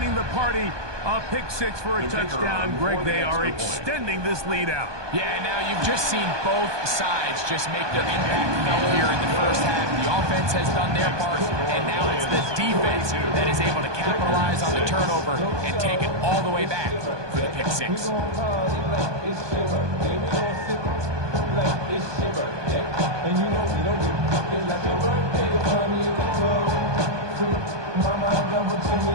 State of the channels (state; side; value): late; left; 1.2 ms